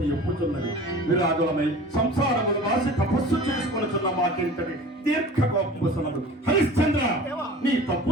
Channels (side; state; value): both; normal; correlation 0.40